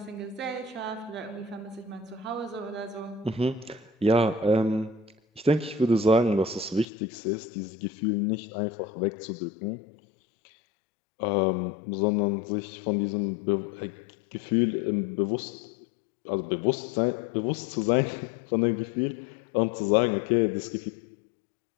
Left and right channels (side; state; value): right; drops out; at 6.9 s